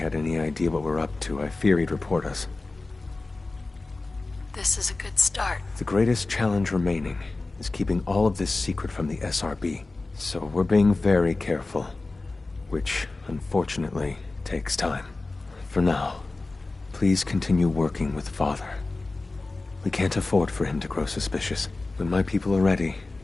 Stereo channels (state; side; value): quieter; right; 3.4 dB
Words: any idea what we're up to, I fear he'd report us. This is a good start. The greatest challenge remaining is keeping all of this secret from the SRB. So we're being very careful, which, unfortunately, takes time. For now, please continue working with Father. We can't afford for him to grow suspicious. When my people are ready,